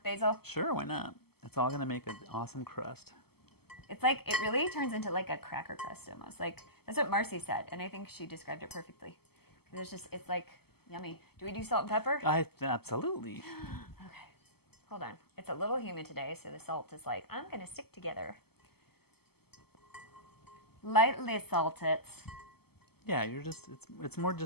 basil. Sure, why not? It's all going to make an awesome crust. It's like it really turns into like a cracker crust almost. Like that's what Marcy said, and I think she described it perfectly. It's like yummy. Do we do salt and pepper? Absolutely. Okay. Hold on. It's a little humid today, so the salt is like, I'm going to stick together. Lightly salt it. Yeah, it's more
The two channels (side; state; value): right; late; 0.96 ms